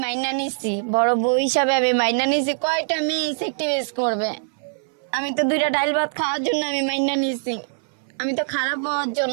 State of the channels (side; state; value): left; silent; 60 dB below the other